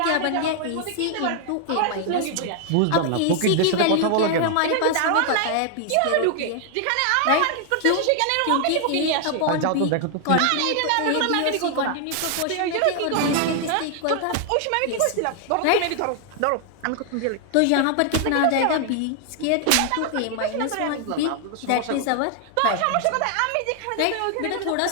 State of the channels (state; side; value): different; both; correlation 0.00